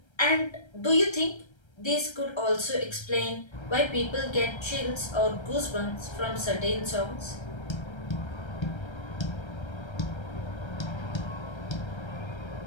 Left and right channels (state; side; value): late; right; 1.3 ms